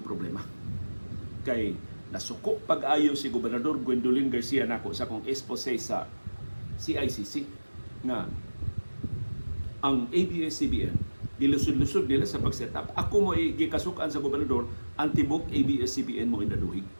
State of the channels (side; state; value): both; inverted; correlation -1.00